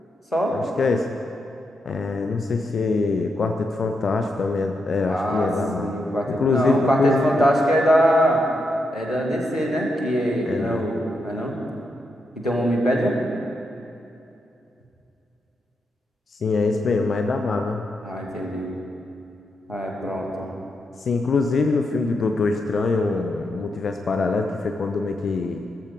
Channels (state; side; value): normal; both; correlation 0.83